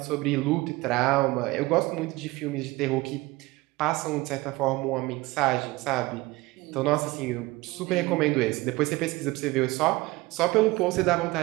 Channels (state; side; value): quieter; left; 21.1 dB